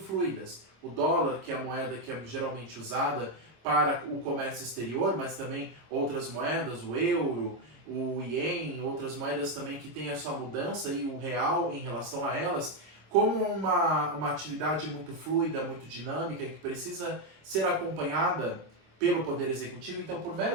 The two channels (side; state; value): left; late; 26 ms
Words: O dólar, que é a moeda que é geralmente usada para o comércio exterior, mas também outras moedas, o euro, o ien, outras moedas também que têm a sua mudança e o real em relação a elas, como uma atividade muito fluida, muito dinâmica e que precisa ser acompanhada pelo Poder Executivo. Então, por